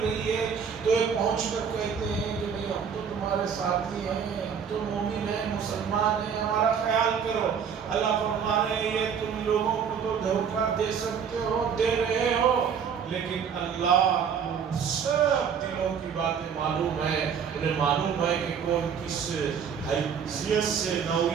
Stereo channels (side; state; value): left; quieter; 7.1 dB